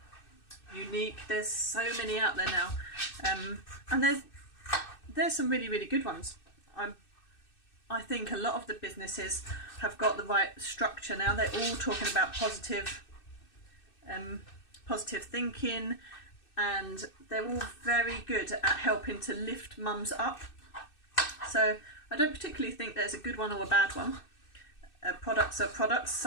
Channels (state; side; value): late; right; 2.6 ms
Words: Unique. There's so many out there now, and there's some really good ones. I think a lot of the businesses have got the right structure now. They're all talking about positive thinking, and they're all very good at helping to lift mums up. So I don't particularly think there's a good one or a bad one. Products are products.